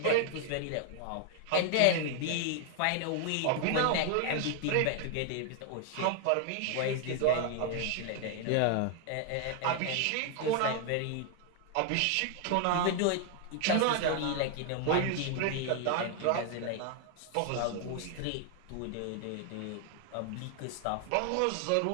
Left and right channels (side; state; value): both; different; correlation 0.00